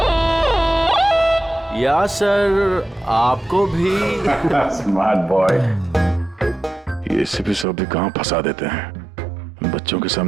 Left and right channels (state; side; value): drops out; left; at 7.7 s